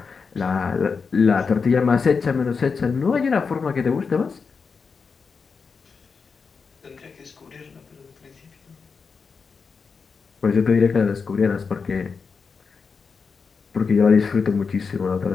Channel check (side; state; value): right; quieter; 5.3 dB